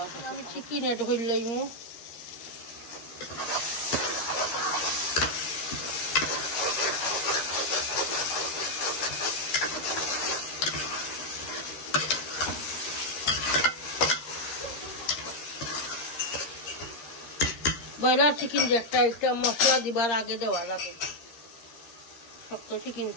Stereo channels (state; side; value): late; right; 13 ms